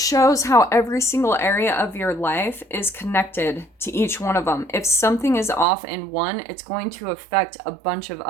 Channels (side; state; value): left; drops out; at 5.7 s